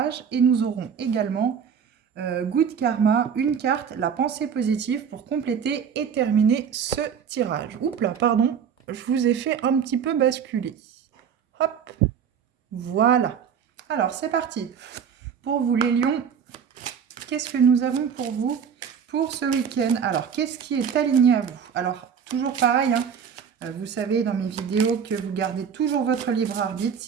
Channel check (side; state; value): left; quieter; 7.4 dB